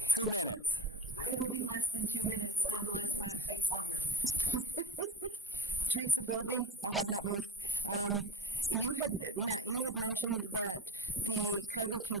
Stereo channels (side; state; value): both; normal; correlation 0.36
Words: 2 minutes. It'll be less than 2 minutes unless Matt takes longer. Teresa Bowlby, I have not moved. Matt, you had mentioned that the cargo